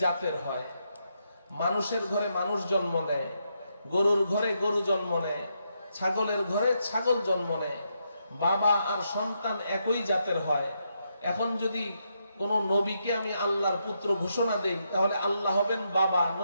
জাতের হয়। মানুষের ঘরে মানুষ জন্ম নেয়, গরুর ঘরে গরু জন্ম নেয়, ছাগলের ঘরে ছাগল জন্ম নেয়। বাবা আর সন্তান একই জাতের হয়। এখন যদি কোন নবীকে আমি আল্লাহর পুত্র ঘোষণা দেই, তাহলে আল্লাহ হবেন বাবা,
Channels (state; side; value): inverted; both; correlation -0.80